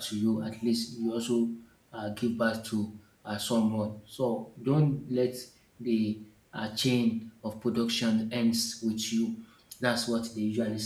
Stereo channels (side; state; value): both; identical; correlation 1.00